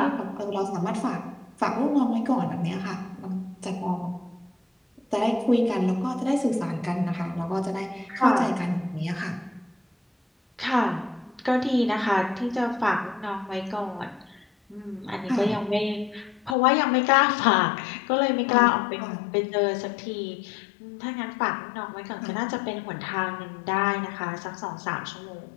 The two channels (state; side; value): drops out; right; at 16.6 s